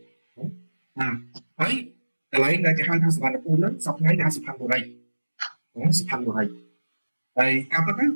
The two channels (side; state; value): both; inverted; correlation -1.00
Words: ណាហើយកន្លែងដែលគេហៅថាសវណ្ណភូមិហ្នឹងសប្តាហ៍ថ្ងៃគេហៅសុផាន់បុរីសុផាន់បុរីហើយការពិតទៅ